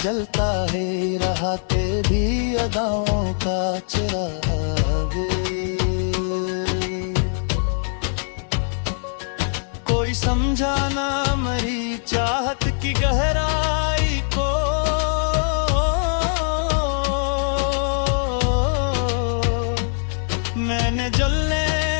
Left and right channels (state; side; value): silent; right; 64 dB below the other